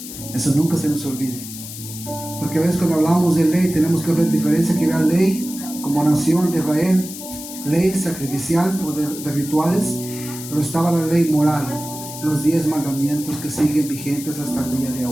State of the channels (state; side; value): noise; left; hiss, 11 dB below the sound